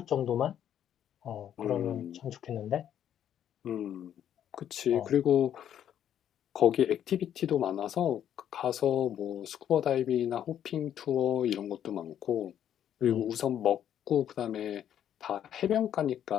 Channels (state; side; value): quieter; right; 10.1 dB